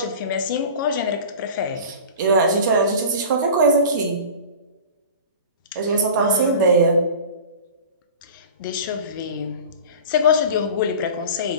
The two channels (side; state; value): both; inverted; correlation -0.37